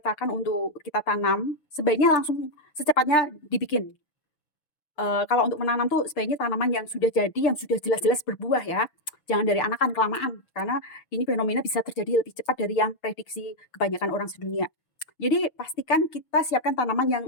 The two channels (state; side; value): late; right; 6.7 ms